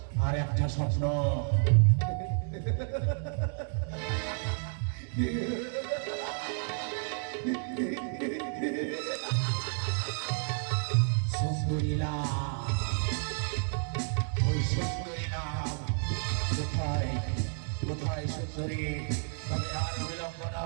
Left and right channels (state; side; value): silent; left; 57 dB below the other